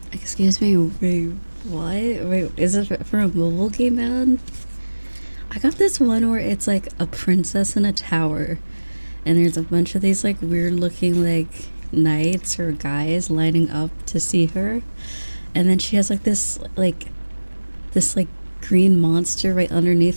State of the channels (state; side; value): inverted; both; correlation -1.00